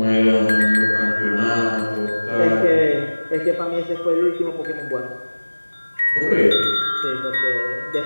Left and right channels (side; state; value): both; inverted; correlation -1.00